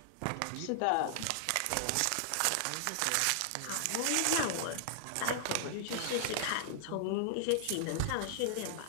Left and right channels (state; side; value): different; both; correlation 0.00